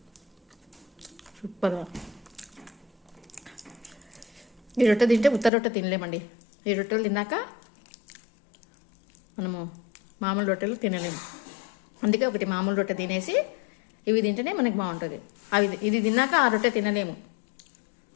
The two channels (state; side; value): drops out; right; at 5.5 s